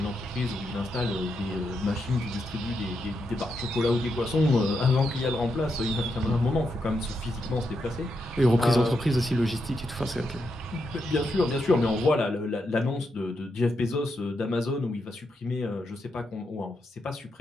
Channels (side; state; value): both; normal; correlation 0.83